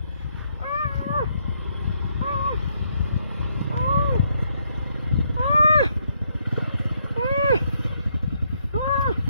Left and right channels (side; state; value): both; inverted; correlation -0.74